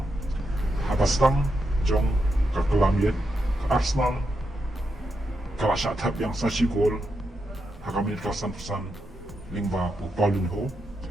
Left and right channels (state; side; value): normal; both; correlation 0.84